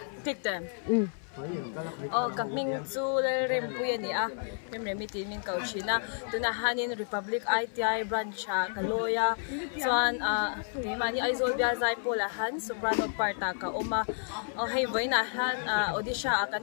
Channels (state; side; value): silent; right; 57 dB below the other